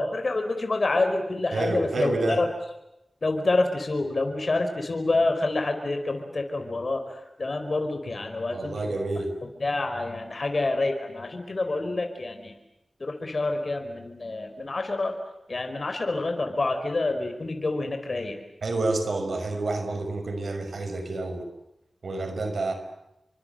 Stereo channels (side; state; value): both; normal; correlation 0.95